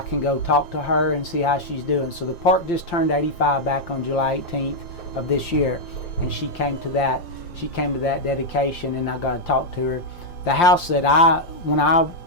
can go talk to her and see how she's doing. So the park just turned 85 back on July 18th of this year, and she came to that dedication, and I got to talk to her. The house that when I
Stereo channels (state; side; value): late; right; 5.7 ms